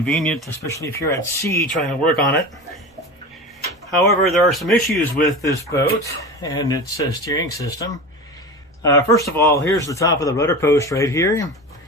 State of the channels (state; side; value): normal; both; correlation 0.30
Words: especially if you're at sea trying to work on it. However, there are some issues with this boat and its steering system. First of all, here's the top of the rudder post right here,